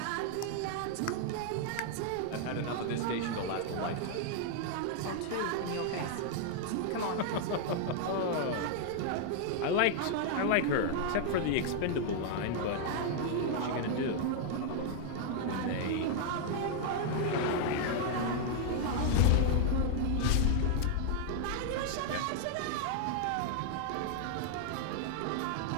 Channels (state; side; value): different; both; correlation 0.00